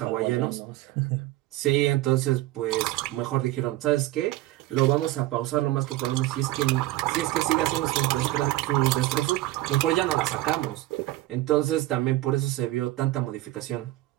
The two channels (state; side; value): quieter; left; 16.9 dB